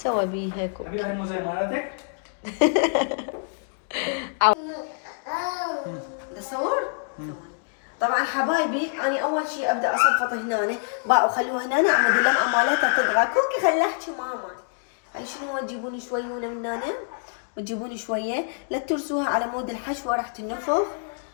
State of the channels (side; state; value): right; silent; digital silence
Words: بيه هيك. ابي هاي الموزه مالتك؟ تصور؟ طبعا حبايبي انا اول شيء ابدا اصفط هنا بقى وخلوها هنا عمود اللمعه مالتها تطغى. كوكي خلي احكي ماما. هاي شنو؟ تجيبوني شويونه من هنا وتجيبوني شويه، لا ترسوها على مود الحشوه راح تنفخ.